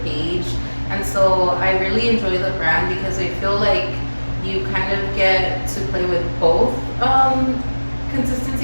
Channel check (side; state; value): both; inverted; correlation -1.00